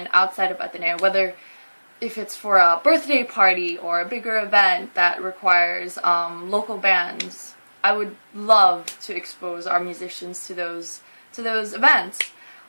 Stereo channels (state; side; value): inverted; both; correlation -1.00